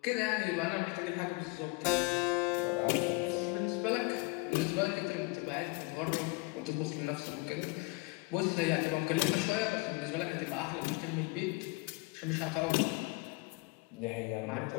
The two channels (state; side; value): quieter; right; 26.4 dB